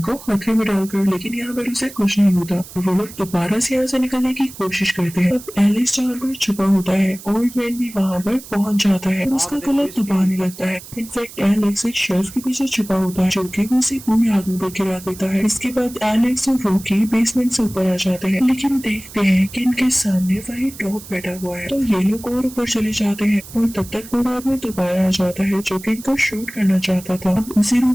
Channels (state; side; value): noise; right; hiss, 16 dB below the sound